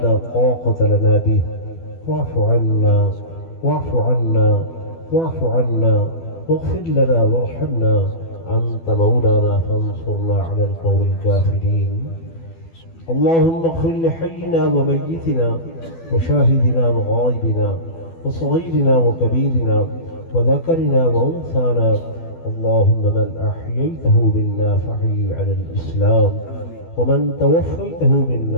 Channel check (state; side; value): late; right; 12 ms